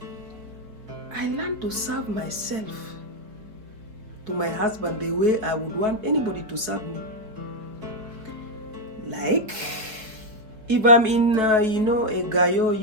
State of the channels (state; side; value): late; left; 4.8 ms